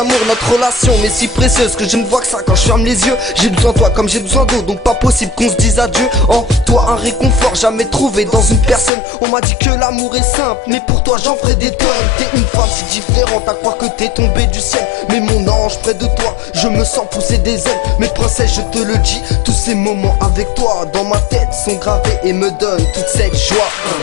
Notre relation m'est si précieuse que je ne vois que ça quand je ferme les yeux. J'ai besoin de toi comme j'ai besoin d'eau, donc pas possible qu'on se dise adieu. En toi un réconfort jamais trouvé dans une personne. On m'a dit que l'amour est simple, mais pour toi j'en ferai des tonnes. T'es une femme si différente à croire que t'es tombée du ciel. Mais mon ange près de toi, je me sens pousser des ailes. Mes princesses je te le dis, tous ces moments avec toi dans ma tête sont gravés et me donnent toute cette joie.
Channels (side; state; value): right; drops out; at 8.9 s